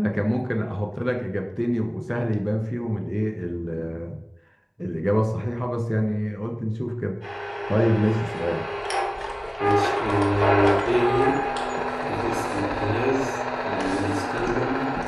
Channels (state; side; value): identical; both; correlation 1.00